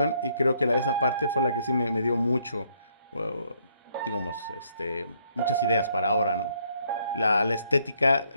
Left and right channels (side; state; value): both; inverted; correlation -0.70